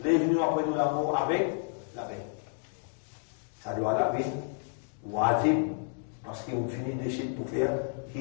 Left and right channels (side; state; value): right; silent; 55 dB below the other